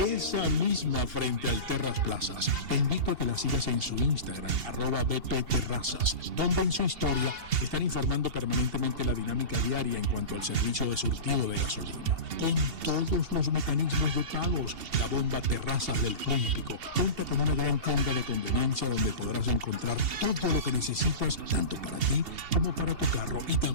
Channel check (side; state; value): left; late; 2.7 ms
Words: misma frente al Terras Plazas. Te invito a que la sigas en su Instagram, @bpterrazas, donde en su historia están informando permanentemente la dinámica diaria en cuanto al servicio de surtido de gasolina. Con todos los mecanismos de pagos, la bomba Terrazas del Club Hípico cuenta con una gran tienda de conveniencia donde podrás encontrar todo lo que necesitas, tanto para ti como para tu carro, y